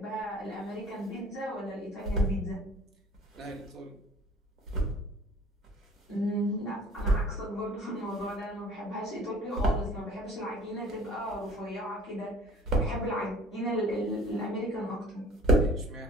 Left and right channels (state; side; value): normal; both; correlation 0.49